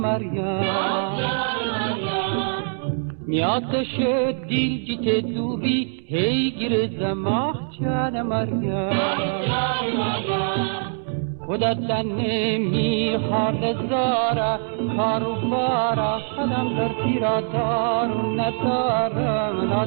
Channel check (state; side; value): silent; left; digital silence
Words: نیاتش دیل جیت دوبی هی گیر زماه جان مریم خودت نمی حال زارا کارو بارا خودم در تیرا دارو ندارم